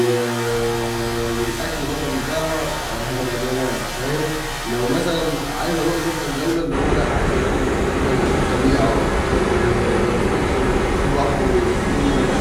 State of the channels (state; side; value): identical; both; correlation 1.00